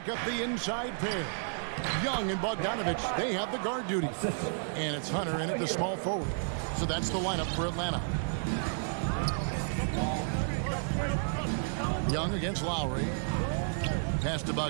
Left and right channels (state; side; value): silent; left; digital silence